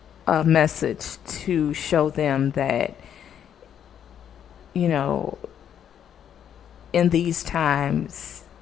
message to show them that, you know, in these times,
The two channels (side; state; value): right; quieter; 9.2 dB